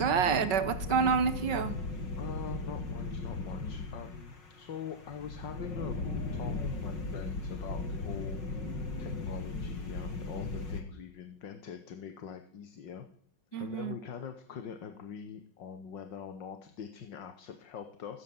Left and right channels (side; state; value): right; late; 5.3 ms